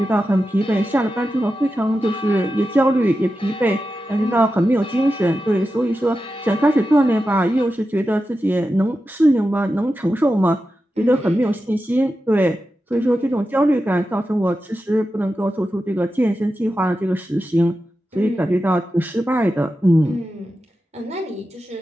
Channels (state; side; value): normal; both; correlation 0.91